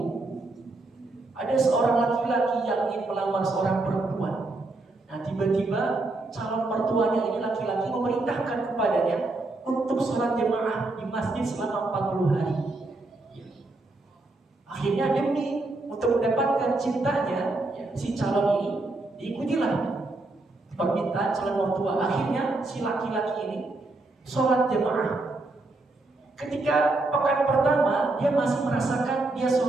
Ada seorang laki-laki yang ingin melamar seorang perempuan. Tiba-tiba calon mertuanya ini laki-laki memerintahkan kepadanya untuk sholat jemaah di masjid selama 40 hari. Akhirnya demi untuk mendapatkan cintanya si calon ini, diikutilah permintaan calon mertua. Akhirnya si laki-laki ini sholat jemaah. Ketika pekan pertama dia masih merasakan dia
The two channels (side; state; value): left; quieter; 3.1 dB